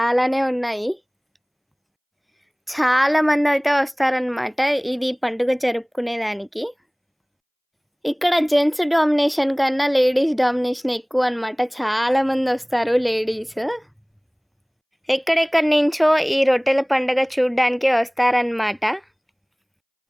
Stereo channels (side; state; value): both; identical; correlation 1.00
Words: ఉన్నాయి. చాలామంది అయితే వస్తారనమాట ఇది పండుగ జరుపుకునేదానికి. ఇక్కడ జెంట్స్ డామినేషన్ కన్నా లేడీస్ డామినేషన్ ఎక్కువ అనమాట. చాలామంది వస్తారు లేడీస్. ఎక్కడెక్కడి నుంచో ఈ రొట్టెల పండుగ చూడడానికి వస్తారనమాట.